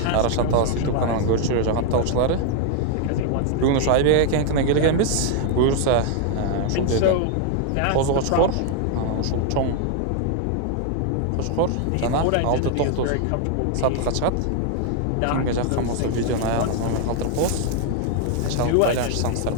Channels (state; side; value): different; both; correlation 0.00